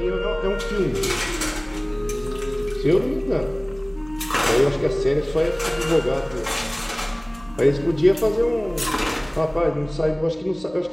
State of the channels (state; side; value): noise; right; hum, 23 dB below the sound